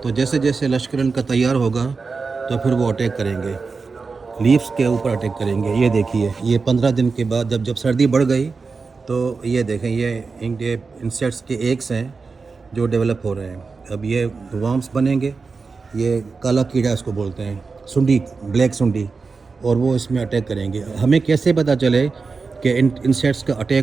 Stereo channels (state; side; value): quieter; left; 4.5 dB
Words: जैसे जैसे लश्कर इनका तैयार होगा तो फिर वो अटैक करेंगे, लीव्स के ऊपर अटैक करेंगे। ये देखिए, ये 15 दिन के बाद जब जब सर्दी बढ़ गई तो ये देखें, ये इनके इंसेक्ट्स के एग्स हैं जो डेवलप हो रहे हैं। अब ये वर्म्स बनेंगे। ये काला कीड़ा इसको बोलते हैं, सुंडी, ब्लैक सुंडी, और वो इसमें अटैक करेंगे। हमें कैसे पता चले कि इन इंसेक्ट्स का